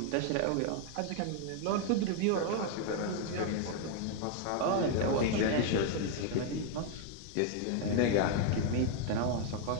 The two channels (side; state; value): both; different; correlation 0.01